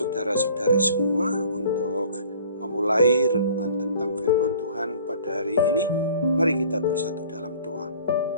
semua. Untuk memulai renungan tentang firman Tuhan pada hari ini, mari kita bersatu dalam doa.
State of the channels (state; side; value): inverted; both; correlation -0.50